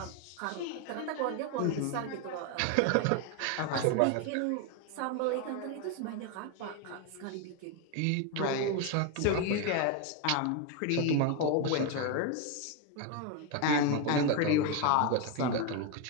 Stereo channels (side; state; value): both; different; correlation 0.02